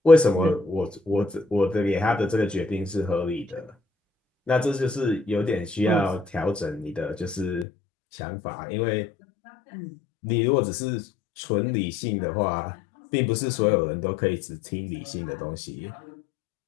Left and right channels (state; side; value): drops out; right; at 7.7 s